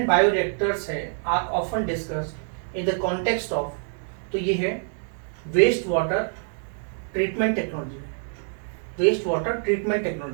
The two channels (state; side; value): silent; left; digital silence